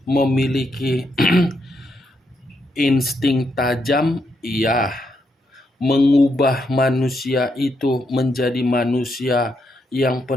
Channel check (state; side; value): normal; both; correlation 0.79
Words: Memiliki insting tajam, iya. Mengubah manusia itu menjadi manusia yang